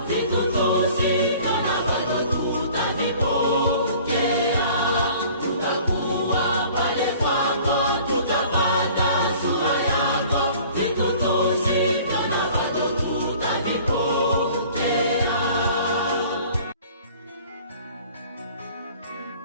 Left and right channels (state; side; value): inverted; both; correlation -0.49